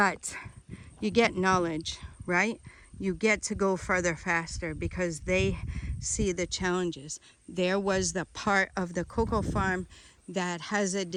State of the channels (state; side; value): identical; both; correlation 1.00